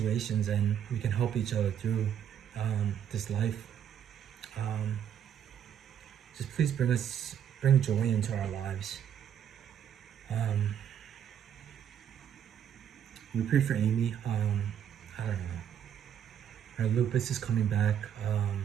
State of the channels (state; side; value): quieter; left; 9.1 dB